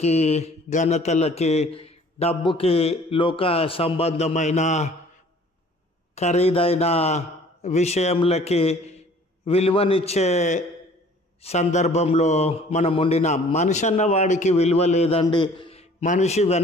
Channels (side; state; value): both; normal; correlation 0.52